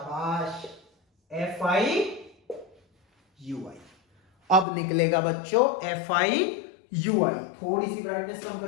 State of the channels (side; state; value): right; drops out; at 4.7 s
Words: एफ आई यू आई। अब निकलेगा बच्चों एफ आई यू आई। थोड़ी सी ब्राइटनेस कम